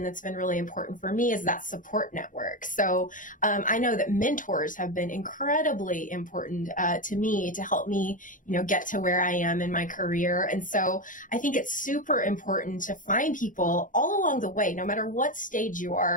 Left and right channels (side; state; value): right; late; 0.38 ms